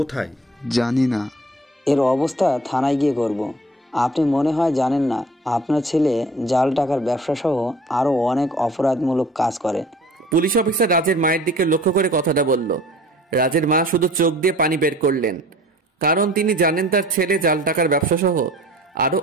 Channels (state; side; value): normal; both; correlation 0.48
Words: জানি না। এর অবস্থা থানায় গিয়ে করব। আপনি মনে হয় জানেন না, আপনার ছেলে জাল টাকার ব্যবসা সহ আরও অনেক অপরাধমূলক কাজ করে। পুলিশ অফিসার রাজের মায়ের দিকে লক্ষ্য করে কথাটা বলল। রাজের মা শুধু চোখ দিয়ে পানি বের করলেন, কারণ তিনি জানেন তার ছেলে জাল টাকার ব্যবসা সহ আরো